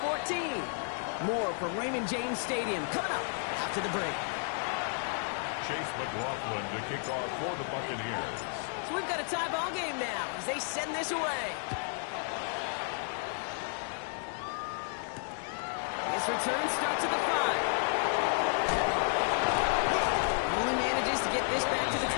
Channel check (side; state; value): right; silent; 56 dB below the other